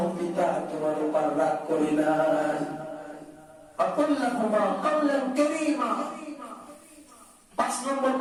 পিতা তোমার উপর রাগ করে না। আকুল্লাহুমা কাওলান কারীমা। ৫ নম্বর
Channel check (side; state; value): both; identical; correlation 1.00